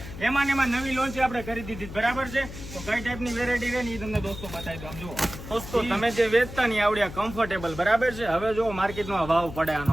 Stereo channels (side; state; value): left; noise; hum, 12 dB below the sound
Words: એમાં નવી લોન્ચ આપણે કરી દીધી બરાબર છે. તો કઈ ટાઈપની વેરાયટી રહે ને એ તમને દોસ્તો બતાવી દો. જુઓ દોસ્તો તમે જે વેચતા નહીં આવડ્યા કમ્ફર્ટેબલ બરાબર છે. હવે જો માર્કેટમાં ભાવ પડે